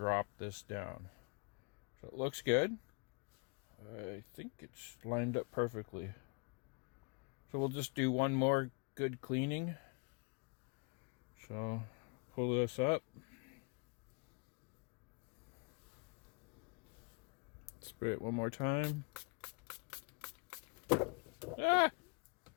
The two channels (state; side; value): quieter; right; 33.2 dB